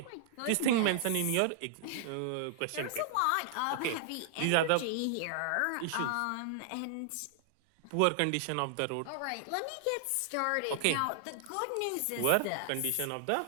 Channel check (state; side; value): different; both; correlation -0.01